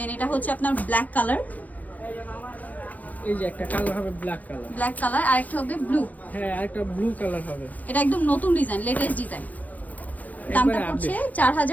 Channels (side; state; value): right; late; 0.076 ms